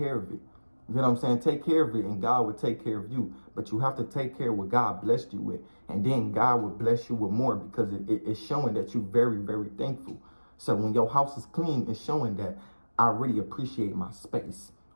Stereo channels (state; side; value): inverted; both; correlation -1.00